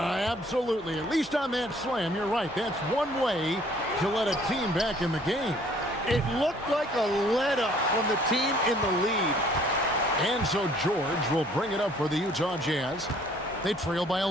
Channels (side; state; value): both; normal; correlation 0.58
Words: At least on that slam, you're right. That's one way to let a team back in the game. It looked like a let-up from the team in the lead. And so George will bring it up for the Utah Jazz. They trail by